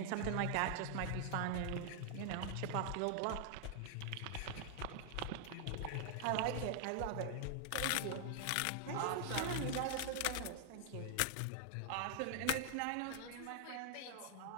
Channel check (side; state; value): both; different; correlation 0.00